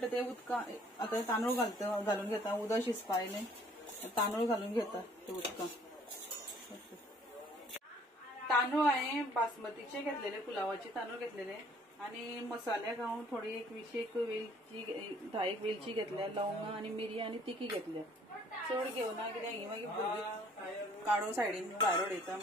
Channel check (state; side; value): normal; both; correlation 0.58